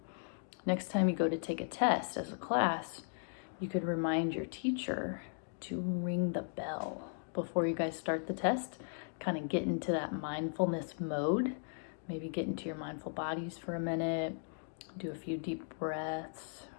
next time you go to take a test as a class, you could remind your teacher to ring the bell before you guys start the test. Kind of get into that mindfulness mode. Maybe get into your mindful bodies for a minute, do a few deep breaths,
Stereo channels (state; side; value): silent; right; digital silence